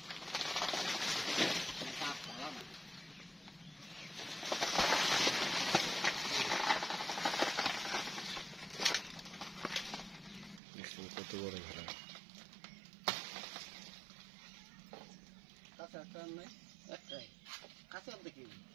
দেখছেন কত বড় ঘাড়া।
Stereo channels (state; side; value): drops out; left; at 10.6 s